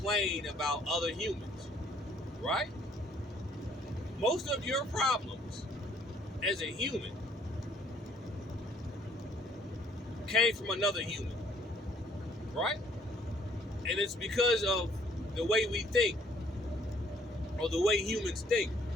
about other humans, right? Most of your problems as a human came from another human, right? And it's because of the way we think, or the way humans think,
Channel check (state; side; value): normal; both; correlation 0.62